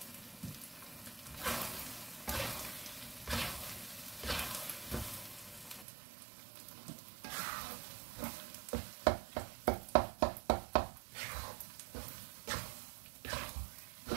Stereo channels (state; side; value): drops out; left; at 5.9 s